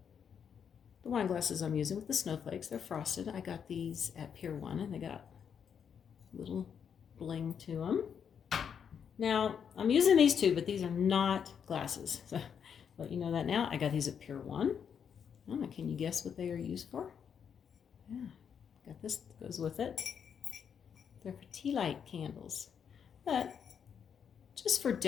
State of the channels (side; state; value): right; quieter; 7.5 dB